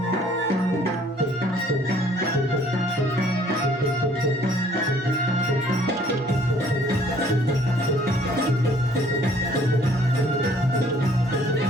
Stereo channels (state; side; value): normal; both; correlation 0.59